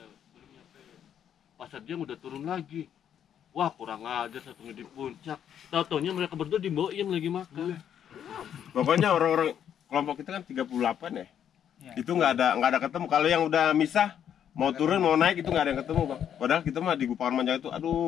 Belum nyampe. Pasar dia udah turun lagi. Wah kurang ajar satunya di puncak. Tahu-taunya mereka berdua di Boim lagi makan. Pokoknya orang-orang kelompok kita kan 38 ya. Iya. Itu nggak ada ketemu. Kalau yang udah misah, mau turun mau naik itu nggak ada yang ketemu bang. Padahal kita mah di Gupakan Manjang itu,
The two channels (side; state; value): right; quieter; 9.2 dB